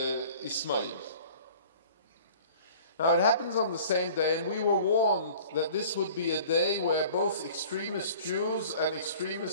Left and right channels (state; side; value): inverted; both; correlation -0.47